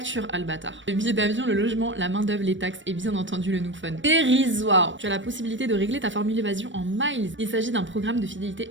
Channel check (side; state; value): left; late; 0.55 ms